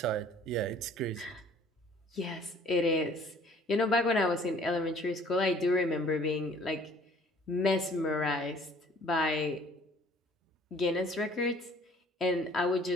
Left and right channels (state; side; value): normal; both; correlation 0.55